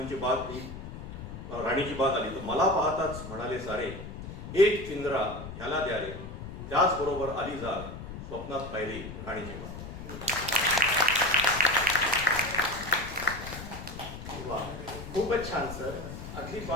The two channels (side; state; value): left; noise; rumble, 10 dB below the sound